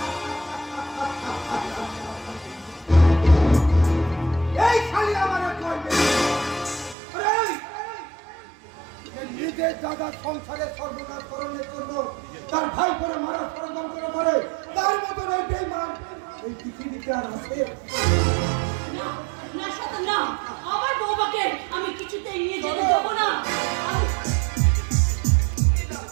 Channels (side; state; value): left; drops out; at 7.0 s